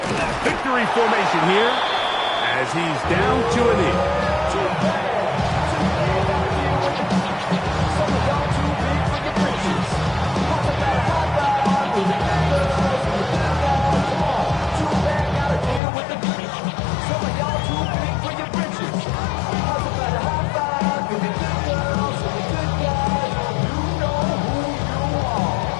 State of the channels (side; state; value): right; drops out; at 15.8 s